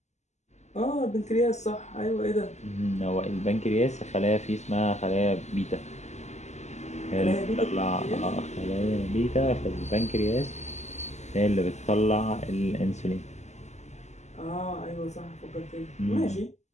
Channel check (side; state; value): right; late; 0.33 ms